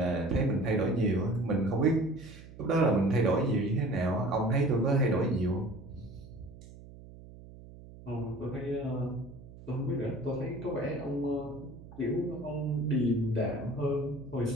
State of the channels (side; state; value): right; noise; hum, 17 dB below the sound